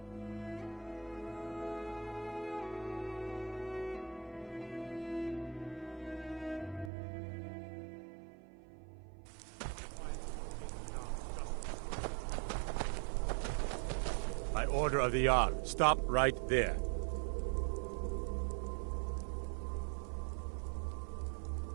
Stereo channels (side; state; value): left; drops out; at 6.9 s